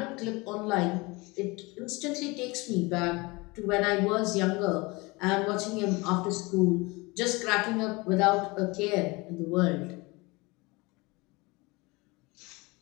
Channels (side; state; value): right; quieter; 24.8 dB